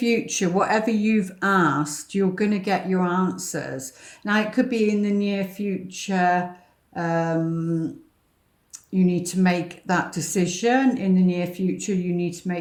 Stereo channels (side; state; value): both; identical; correlation 1.00